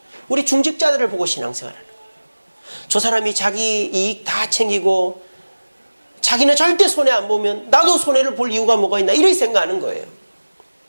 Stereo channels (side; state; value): both; inverted; correlation -1.00